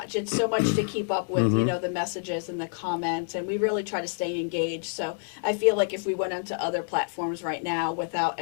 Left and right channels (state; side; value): silent; right; 60 dB below the other